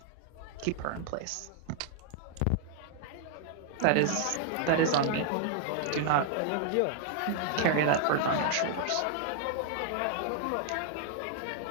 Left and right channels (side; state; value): both; different; correlation -0.01